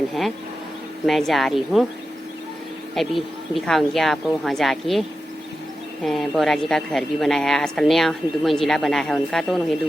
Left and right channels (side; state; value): both; normal; correlation 0.91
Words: है। मैं जा रही हूँ, अभी दिखाऊंगी आपको वहाँ जाके। बोरा जी का घर भी बनाया है, आजकल नया 2 मंजिला बना है उनका, तो उन्होंने 2